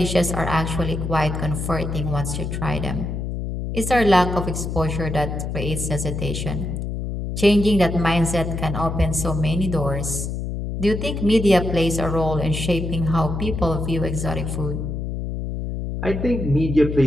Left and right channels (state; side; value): noise; left; hum, 4 dB below the sound